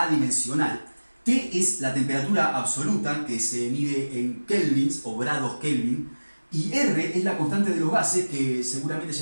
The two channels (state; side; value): inverted; both; correlation -1.00